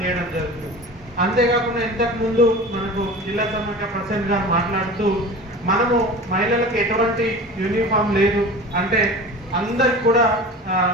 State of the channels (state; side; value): normal; both; correlation 0.35